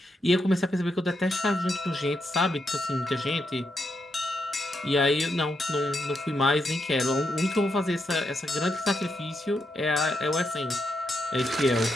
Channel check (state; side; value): normal; both; correlation 0.82